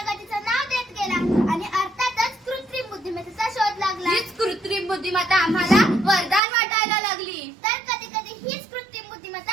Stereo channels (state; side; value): drops out; left; at 6.4 s